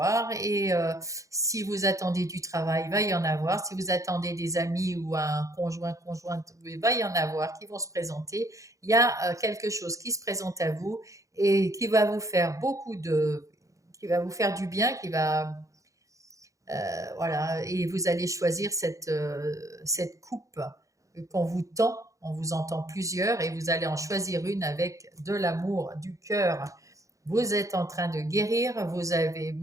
Et si vous attendez du travail, va y en avoir. Si vous attendez des amis ou un conjoint, conjointe, va y en avoir qui vont se présenter. Il y a quelque chose qui se présente à vous et qui va vous faire qui va vous faire du bien, voilà, et vous allez choisir cette coupe qu'on vous tend. On vous entend plusieurs et vous allez en choisir une avec de l'amour, du cœur. Vous êtes en train de guérir, vous avez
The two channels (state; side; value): late; left; 0.16 ms